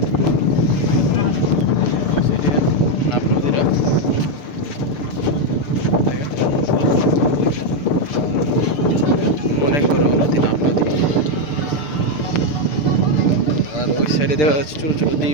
নাফ নদীটা দেখেন, অনেক বড় নদী নাফ নদী। আর ওই সাইডে দেখা যাচ্ছে ছোটো ছোটো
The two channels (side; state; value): right; late; 6.7 ms